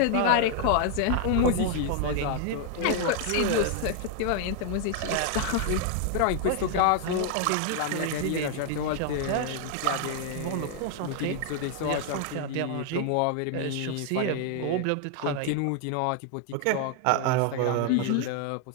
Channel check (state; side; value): different; both; correlation 0.00